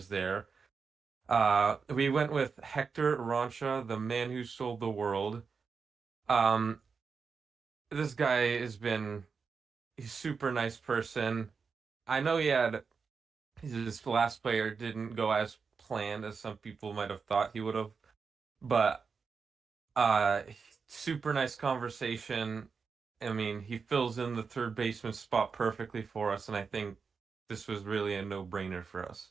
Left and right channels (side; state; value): left; quieter; 5.4 dB